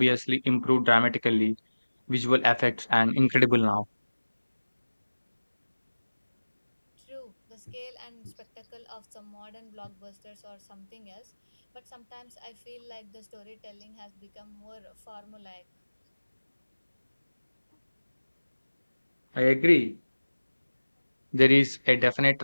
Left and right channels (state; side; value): inverted; both; correlation -1.00